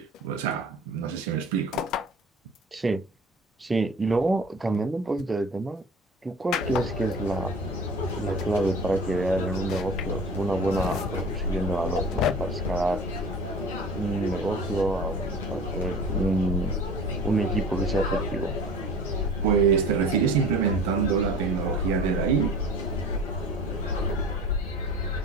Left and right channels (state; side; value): normal; both; correlation 0.40